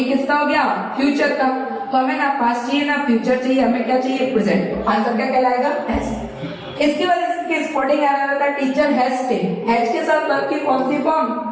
किसका हो गया, फ्यूचर का। तो हमें ना पास्ट चाहिए ना फ्यूचर चाहिए, हमें क्या चाहिए, प्रेजेंट। आंसर क्या कहलाएगा, हैज। इसकी वजह से स्पोर्टिंग एरर आता है, टीचर हैज टेक। हैज के साथ वर्ब की कौन सी फॉर्म,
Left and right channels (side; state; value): both; identical; correlation 1.00